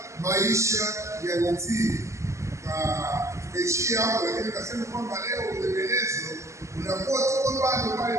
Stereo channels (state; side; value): late; left; 0.14 ms